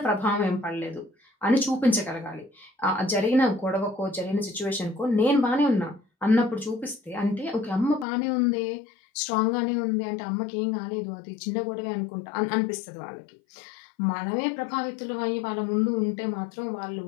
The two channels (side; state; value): right; drops out; at 8.1 s